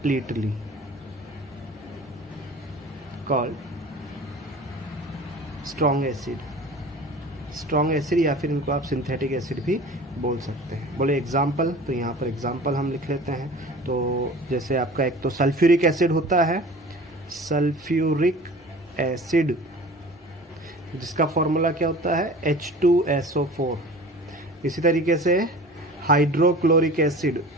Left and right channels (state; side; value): normal; both; correlation 0.41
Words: called strong acid, या फिर इनको आप सिंथेटिक एसिड भी बोल सकते हैं। बोले एग्जाम्पल, तो यहाँ पर एग्जाम्पल हम लिख लेते हैं। तो जैसे आपका एक तो सल्फ्यूरिक एसिड होता है, सल्फ्यूरिक एसिड जिसका फॉर्मूला क्या होता है H2SO4। इसी तरीके से हाइड्रोक्लोरिक एसिड,